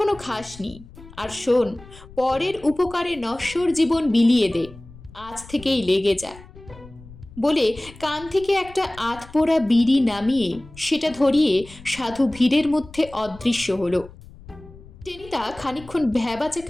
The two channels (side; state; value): left; noise; rumble, 19 dB below the sound